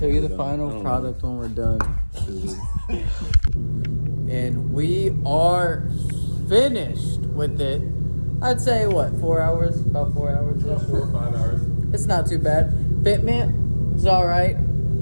you the final product when we're done. And we are finished with it. I'd say what, 4 hours? About 4 hours. 4 or 5 hours. It's not too bad. Fitment is all right.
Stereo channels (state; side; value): inverted; both; correlation -1.00